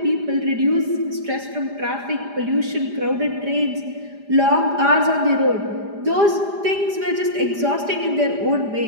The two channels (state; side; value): late; left; 4.9 ms